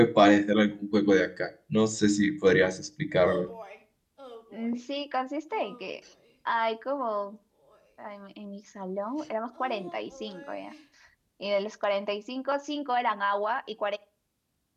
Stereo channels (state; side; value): identical; both; correlation 1.00